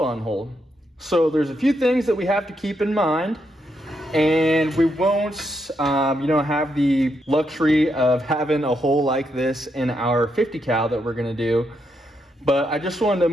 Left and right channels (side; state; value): both; normal; correlation 0.80